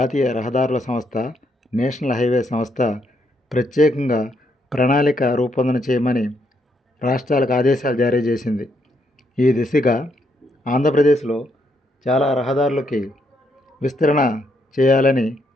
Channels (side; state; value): both; normal; correlation 0.75